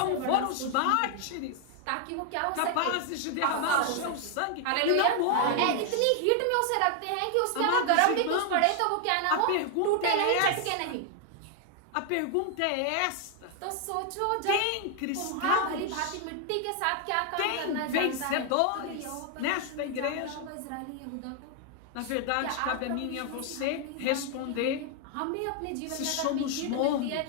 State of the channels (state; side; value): different; both; correlation 0.00